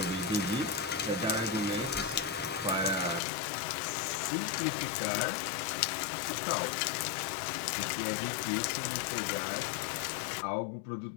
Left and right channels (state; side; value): drops out; right; at 3.2 s